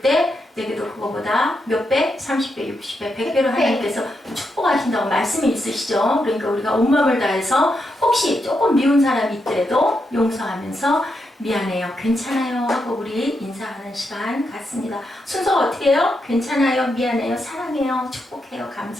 내게도 그거보다 몇 배? 30배, 60배, 100배로 하나님께서 축복하신다고 말씀이 있으시죠? 그러니까 우리가 온 마음을 다해서 혹시 조금 미운 사람이 있더라도 용서하면서 미안해요, 괜찮아요 하고 우리 인사하는 시간 갖습니다. 순서가 어떻게 해요? 괜찮아요, 미안해요, 사랑해요, 축복해요,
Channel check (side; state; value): both; normal; correlation 0.83